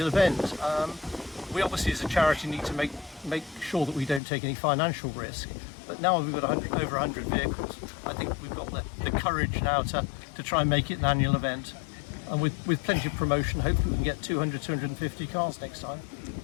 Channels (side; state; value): right; drops out; at 4.2 s